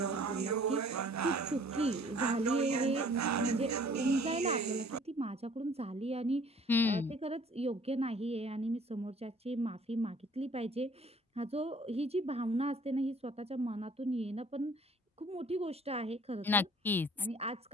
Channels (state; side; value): normal; both; correlation 0.54